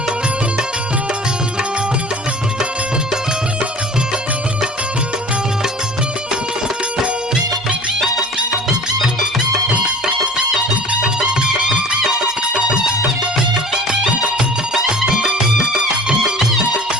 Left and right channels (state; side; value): normal; both; correlation 0.43